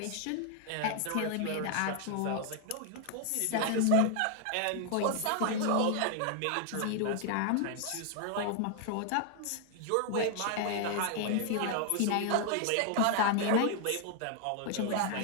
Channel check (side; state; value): both; different; correlation 0.00